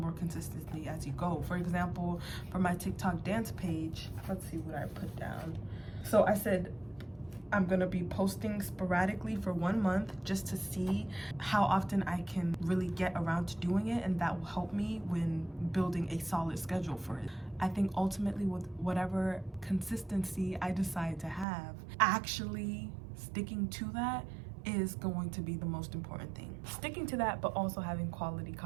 consistency as you go. For example, for my TikTok dance page, let's see what I put down. So I said I'm gonna be posting sporadically for 1 month just to see how often I can really get around to doing it, and that will help me when building a solid schedule for it. I think ultimately with whatever consistency I decide to have, actually sticking to that is going to be the most important thing. Sticking to that, but also having quality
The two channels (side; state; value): left; drops out; at 21.5 s